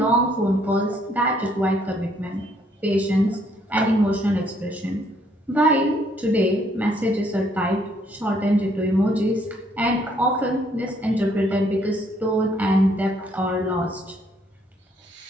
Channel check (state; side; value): normal; both; correlation 0.67